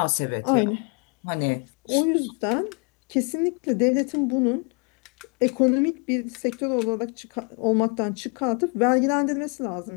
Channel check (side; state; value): right; quieter; 36.8 dB